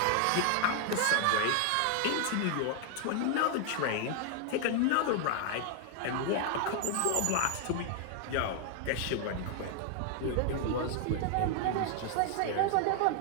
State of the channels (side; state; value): both; different; correlation 0.00